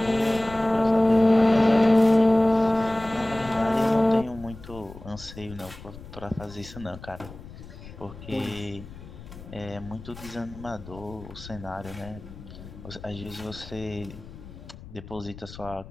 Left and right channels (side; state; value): left; noise; rumble, 16 dB below the sound